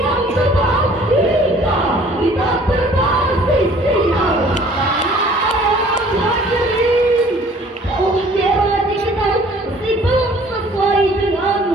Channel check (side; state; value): both; normal; correlation 0.54